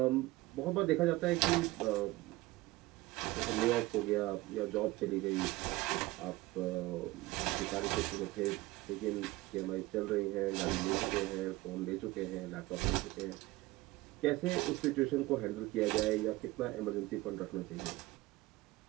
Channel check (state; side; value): quieter; left; 19.6 dB